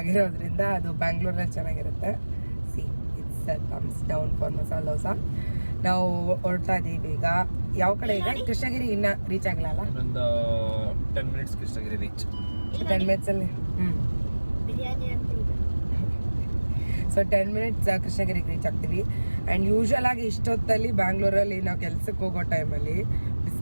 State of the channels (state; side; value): inverted; both; correlation -1.00